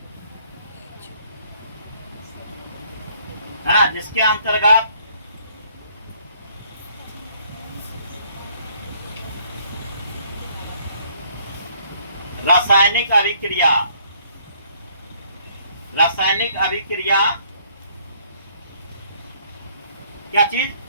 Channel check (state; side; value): inverted; both; correlation -0.63